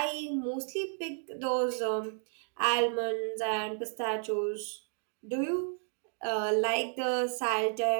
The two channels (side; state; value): left; silent; 56 dB below the other